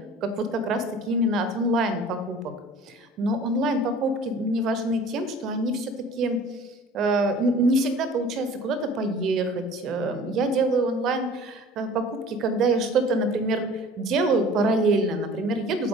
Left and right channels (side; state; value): both; normal; correlation 0.46